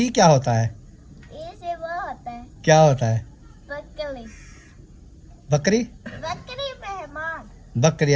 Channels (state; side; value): identical; both; correlation 1.00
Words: क्या होता है? ए से वो होता है क्या होता है? बकरी। बकरी? बकरी मेहमान। बकरी,